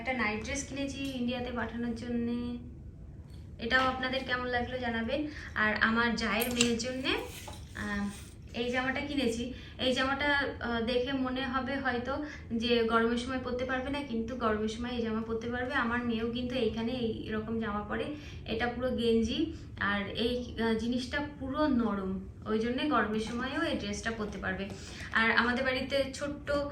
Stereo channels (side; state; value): both; identical; correlation 1.00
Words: নাইট ড্রেস কিনেছি ইন্ডিয়াতে পাঠানোর জন্য, এটাও আপনাদের কেমন লাগলো জানাবেন। আর আমার জায়ের মেয়ের জন্যে এই জামাটা কিনেছি। এই জামাটা দেখে মনে হবে হয়তো যে গরমের সময় পরতে পারবে না, কিন্তু গরমের সময় এই জামা পরতে পারবে। আমার মেয়েও কিন্তু এইখানে এইরকম জামা পরে, এটা পুরো গেঞ্জি আর এই জিনিসটা পুরো নরম, ওই জন্যে গরমের সময়ও এই ড্রেসটা পরতে পারবে। আর আমাদের বাড়িতে ছোট্ট